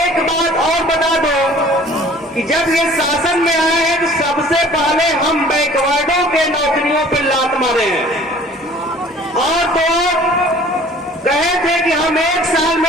बात और बता दो कि जब ये शासन में आए हैं तो सबसे पहले हम बैकवर्डों के नौकरियों पर लात मारे हैं। और तो कहे थे कि हम 1 साल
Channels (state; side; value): normal; both; correlation 0.50